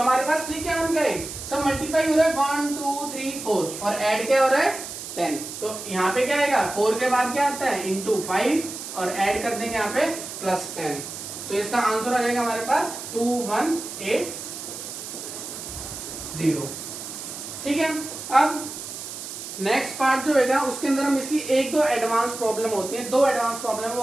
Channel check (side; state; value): right; noise; hiss, 9 dB below the sound